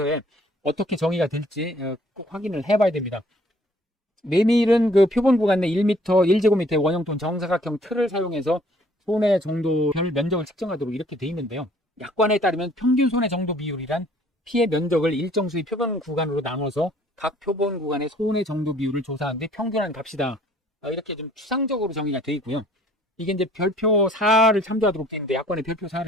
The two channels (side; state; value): both; normal; correlation 0.58